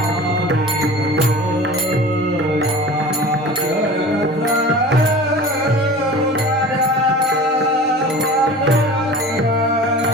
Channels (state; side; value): normal; both; correlation 0.38